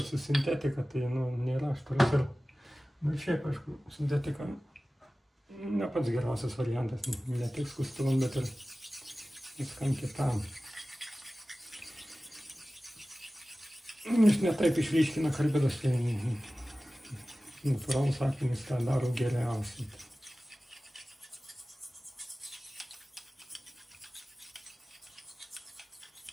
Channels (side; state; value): both; normal; correlation 0.96